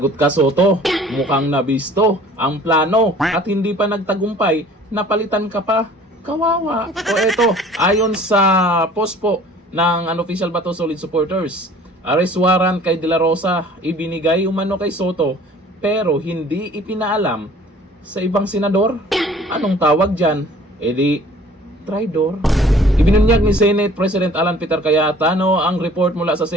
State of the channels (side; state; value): both; normal; correlation 0.51